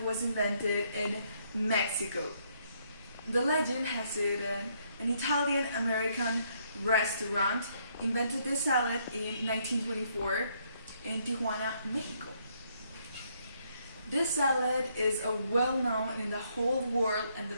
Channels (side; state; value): both; inverted; correlation -0.71